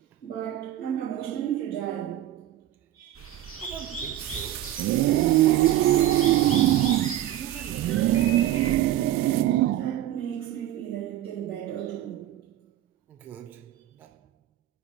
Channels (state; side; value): quieter; left; 13.0 dB